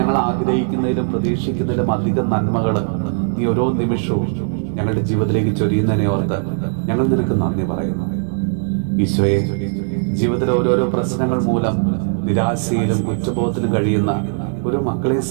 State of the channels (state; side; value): silent; left; 55 dB below the other